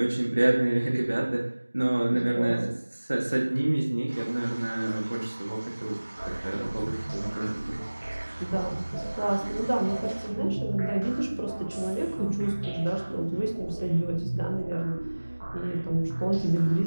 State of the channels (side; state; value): both; inverted; correlation -1.00